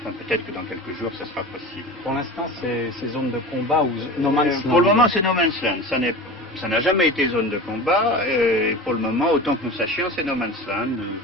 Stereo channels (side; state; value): both; normal; correlation 0.32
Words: peut-être que dans quelques jours, ça sera possible. Pour l'instant, c'est ces zones de combat ou No Man's Land? Pour le moment, c'est No Man's Land. Ça n'est Ça n'a jamais été zone de combat, et pour le moment, autant que nous sachions, c'est no man's land.